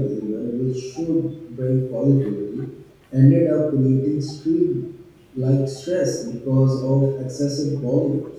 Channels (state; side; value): identical; both; correlation 1.00